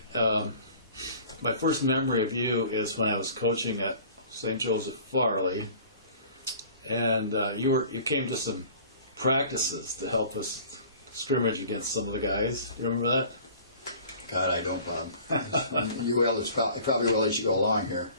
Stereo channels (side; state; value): both; inverted; correlation -0.47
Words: my first memory of you is when I was coaching at St. Joseph Farley, and you came to some practices to help us scrimmage against some of the guys. You remember that? God, I don't, Bob. You will. I probably will as you go along here.